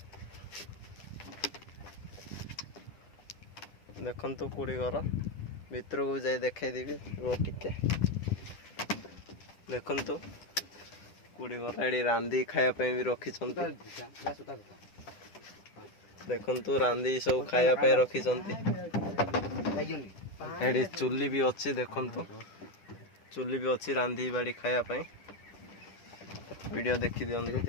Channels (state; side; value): late; right; 10 ms